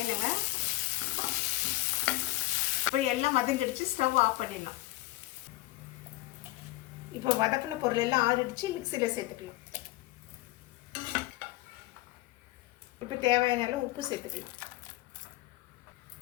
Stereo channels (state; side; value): quieter; right; 18.6 dB